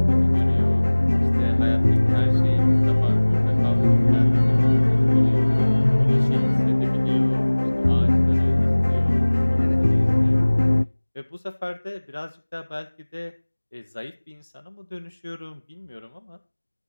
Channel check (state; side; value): inverted; both; correlation -1.00